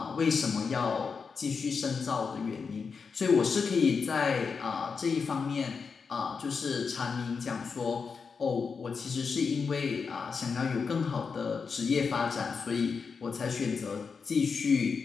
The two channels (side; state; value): right; quieter; 5.4 dB